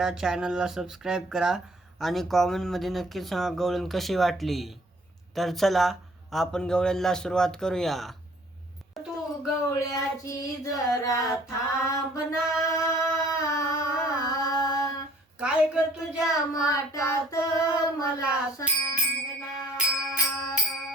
चॅनलला सबस्क्राईब करा आणि कॉमेंटमध्ये नक्की सांगा गवळण कशी वाटली. तर चला आपण गवळणला सुरुवात करूया. तू गवळ्याची जरा थांबना, काय ग तुझ्या माटात मला सांगना.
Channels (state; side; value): normal; both; correlation 0.57